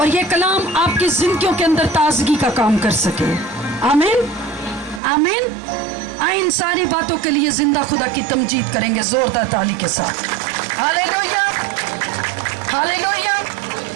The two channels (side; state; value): left; drops out; at 5.0 s